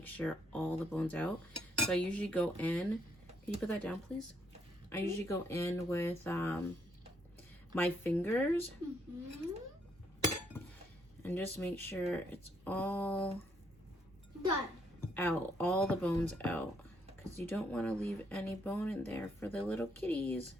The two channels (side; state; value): both; normal; correlation 0.72